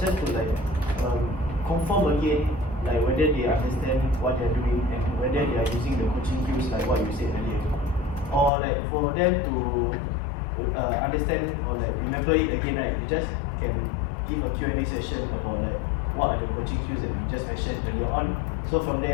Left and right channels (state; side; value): drops out; right; at 8.5 s